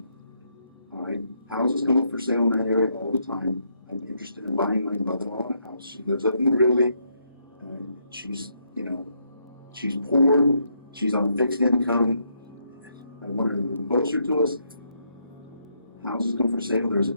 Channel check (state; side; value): inverted; both; correlation -0.76